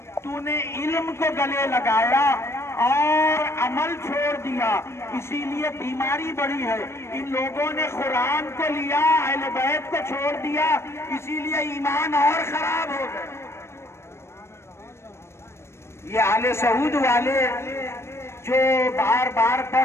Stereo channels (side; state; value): right; late; 0.13 ms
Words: तूने इल्म को गले लगाया और अमल छोड़ दिया, इसीलिए बीमारी बढ़ी है। इन लोगों ने कुरान को लिया, अहले बैत को छोड़ दिया, इसीलिए ईमान और खराब हो गए। ये आले सऊद वाले जो बार बार